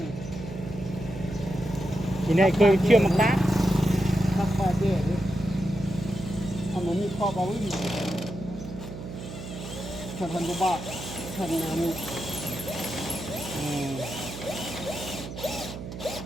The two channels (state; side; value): noise; right; hum, 10 dB below the sound